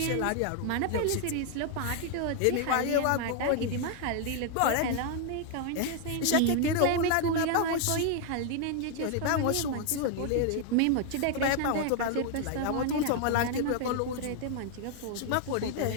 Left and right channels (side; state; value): both; different; correlation 0.00